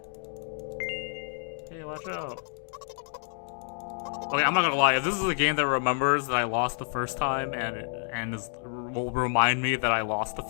Hey, watch out. Okay, I'm not gonna lie, if this is a game that remembers that I lost the first time and will remind me that I lost the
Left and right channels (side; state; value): right; silent; 59 dB below the other